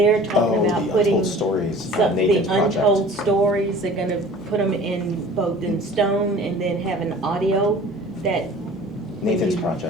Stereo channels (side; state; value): both; normal; correlation 0.45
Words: talking Oh, about the putting Untold Stories, some, the Nathan's project. untold stories. They're gonna put them in both in stone and then have an audio that. Nathan's